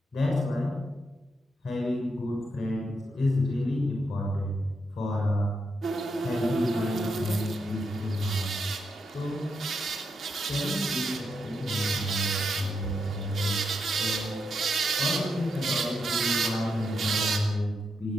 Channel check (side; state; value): both; normal; correlation 0.83